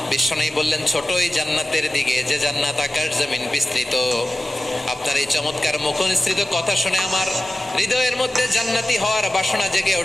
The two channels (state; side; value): normal; both; correlation 0.95